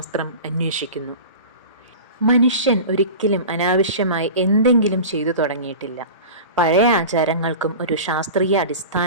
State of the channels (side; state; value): both; inverted; correlation -0.33